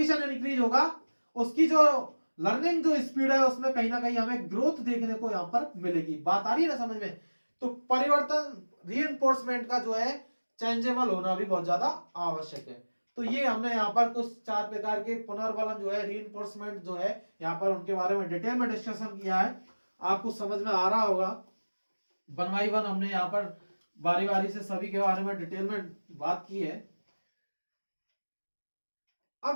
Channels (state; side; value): inverted; both; correlation -1.00